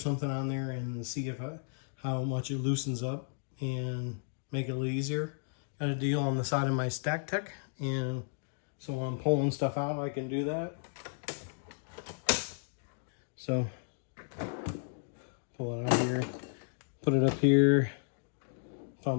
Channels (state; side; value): silent; right; digital silence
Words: on there and see if how much it loosens up and make it a little easier. Got a deal on the side of my stacktech, and so when I'm pulling stuff out, I can do that. So pull it out here, put it up here if